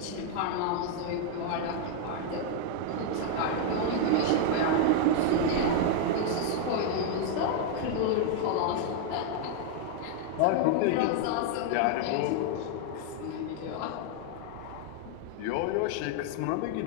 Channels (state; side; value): different; both; correlation 0.00